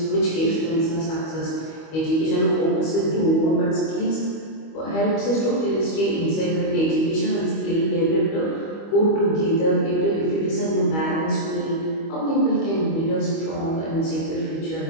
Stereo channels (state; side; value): late; right; 25 ms